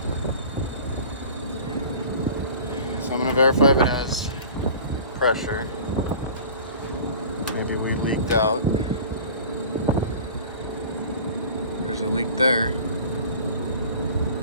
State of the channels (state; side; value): inverted; both; correlation -0.41